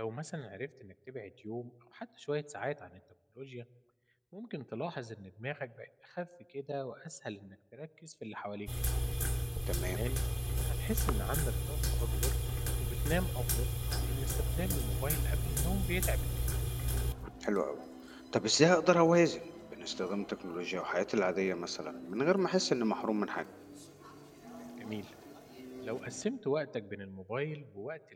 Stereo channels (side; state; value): both; identical; correlation 1.00